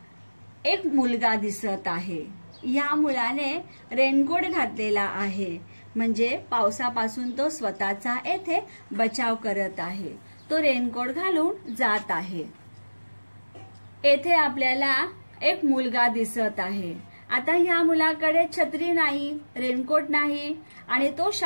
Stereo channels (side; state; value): both; inverted; correlation -1.00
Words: एक मुलगा दिसत आहे. या मुलाने रेनकोट घातलेला आहे, म्हणजे पावसापासून तो स्वतःचा येथे बचाव करत आहे. तो रेनकोट घालून जात आहे. येथे आपल्याला एक मुलगा दिसत आहे. आता ह्या मुलाकडे छत्री नाही, रेनकोट नाही आणि तो